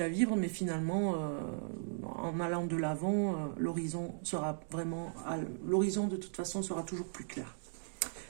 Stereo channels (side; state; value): left; silent; digital silence